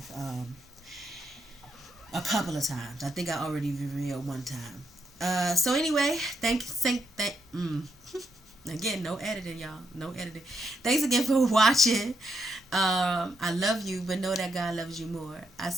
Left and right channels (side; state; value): both; normal; correlation 0.80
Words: a couple of times. I think I already revealed one time. So anyway, again, no editing, y'all. No editing. Thanks again for watching. I love you, but know that God loves you more. I'll